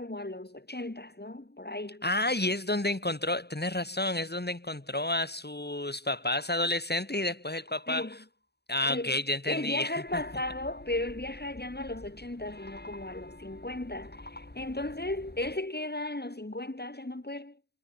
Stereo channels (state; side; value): late; right; 0.48 ms